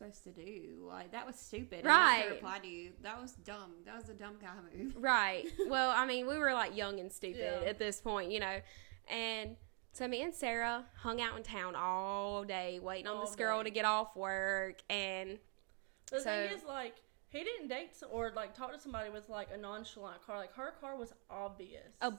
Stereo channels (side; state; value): left; quieter; 38.2 dB